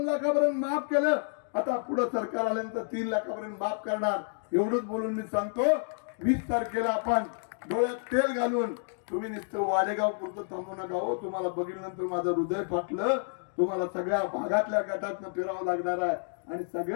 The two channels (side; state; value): right; silent; digital silence